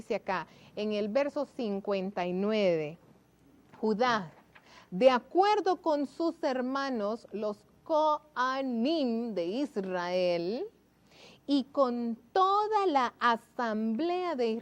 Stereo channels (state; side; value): identical; both; correlation 1.00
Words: acá en el verso 59. Judá, de acuerdo con sus hermanos, los Coanim de Israel, y con toda la asamblea de